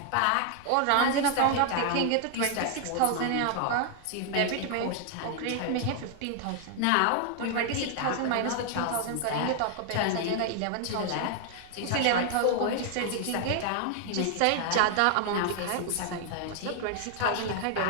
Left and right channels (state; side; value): different; both; correlation 0.00